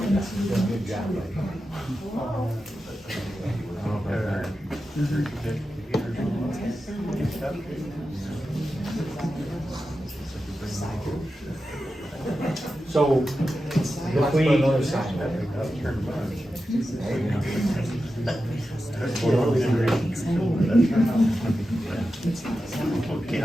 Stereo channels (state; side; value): normal; both; correlation 0.91